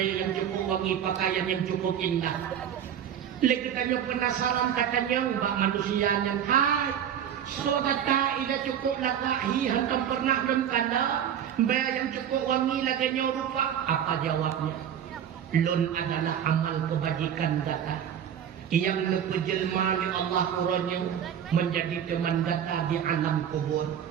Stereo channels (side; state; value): left; quieter; 9.2 dB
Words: yang cukup wangi pakaian yang cukup indah. Lekatanya penasaran katanya mbak manusia yang hai. So kata ila cukup lakahi hantam pernah kemkana bayi yang cukup wangi laganya rupa. Apa jawabnya? Lun adalah amal kebajikan data yang lepejelma oleh Allah kurangnya menjadi teman data di alam kubur.